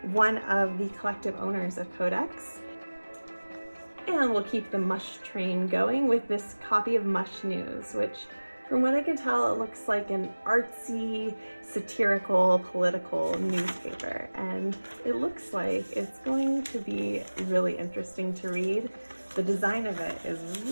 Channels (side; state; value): both; inverted; correlation -1.00